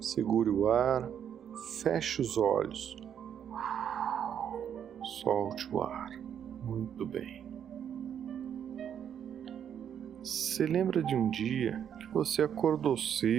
Segure o ar, feche os olhos. Solte o ar. Muito bem. Você lembra de um dia que você acordou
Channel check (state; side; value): quieter; left; 8.9 dB